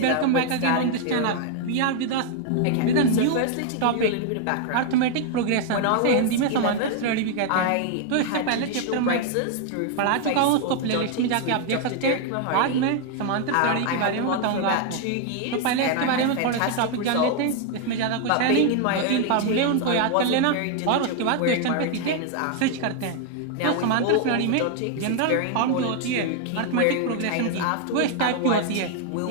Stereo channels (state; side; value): different; both; correlation 0.00